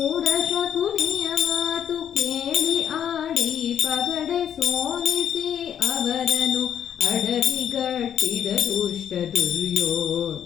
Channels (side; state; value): right; quieter; 9.3 dB